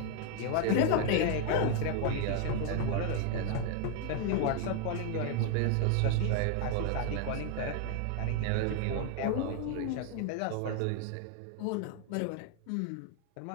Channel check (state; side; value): different; both; correlation 0.00